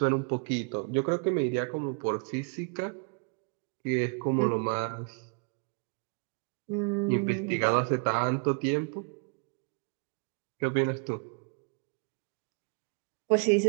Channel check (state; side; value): quieter; left; 38.2 dB